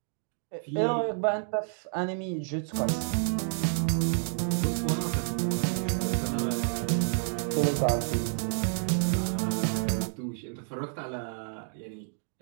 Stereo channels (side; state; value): left; silent; 58 dB below the other